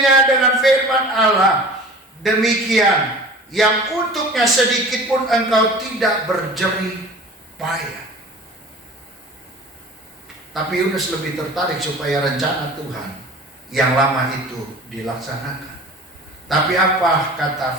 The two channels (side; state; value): both; normal; correlation 0.42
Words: dengan firman Allah, demikian yang untuknya sedikit pun engkau tidak berjerih payah. Tapi Yunus lebih tertarik supaya rencana Tuhan yang lama itu dilaksanakan. Tapi apa kata